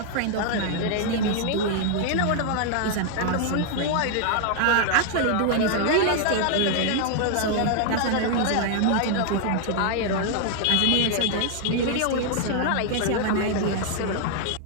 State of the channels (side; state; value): both; different; correlation 0.00